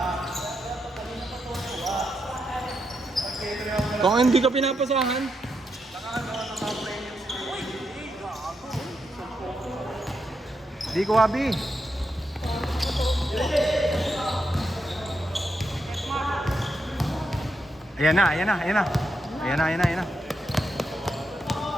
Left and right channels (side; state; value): both; normal; correlation 0.83